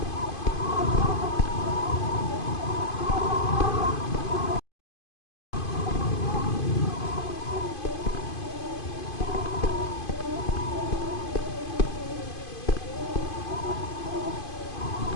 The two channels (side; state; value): right; late; 2.5 ms